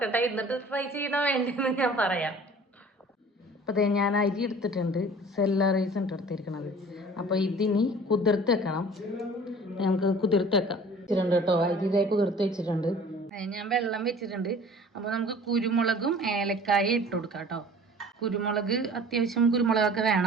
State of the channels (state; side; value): normal; both; correlation 0.46